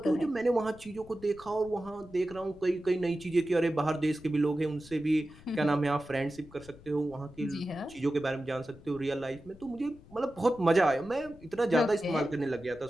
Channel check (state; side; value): noise; left; rumble, 21 dB below the sound